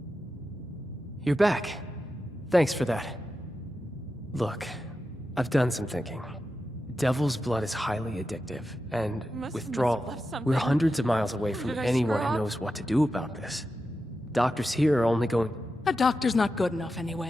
You're back. Thanks for that. Look, I've done some thinking. Devil's blood is highly addictive, and withdrawal. We're hundreds of miles away from anyone who knows what to do about this. Doctors here are only going... A doctor's not good enough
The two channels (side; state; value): both; normal; correlation 0.90